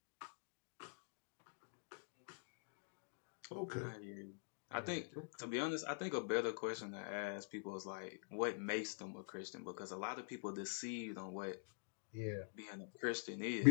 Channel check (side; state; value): right; silent; digital silence